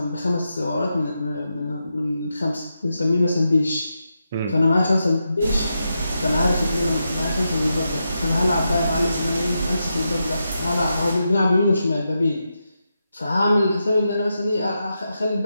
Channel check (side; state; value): both; inverted; correlation -0.86